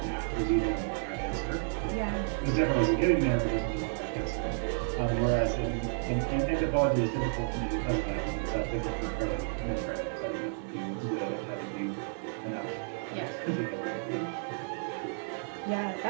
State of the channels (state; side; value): silent; left; digital silence